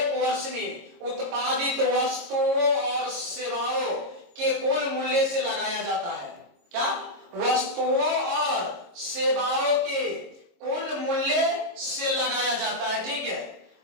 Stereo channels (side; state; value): left; late; 22 ms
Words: वर्ष में उत्पादित वस्तुओं और सेवाओं के कुल मूल्य से लगाया जाता है। क्या, वस्तुओं और सेवाओं के कुल मूल्य से लगाया जाता है, ठीक है।